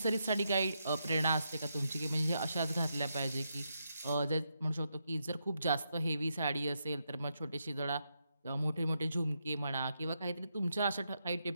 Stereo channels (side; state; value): both; inverted; correlation -0.82